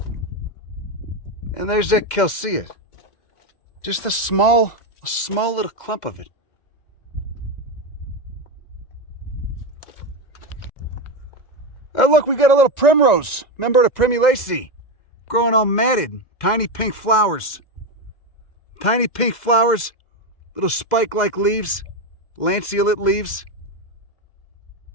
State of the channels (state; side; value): late; right; 2.1 ms